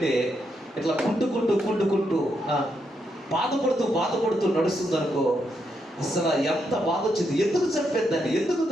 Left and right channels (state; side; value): normal; both; correlation 0.80